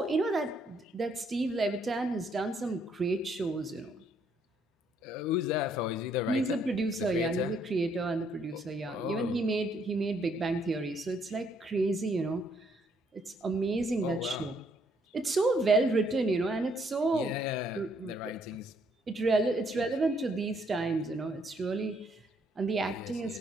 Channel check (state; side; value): normal; both; correlation 0.69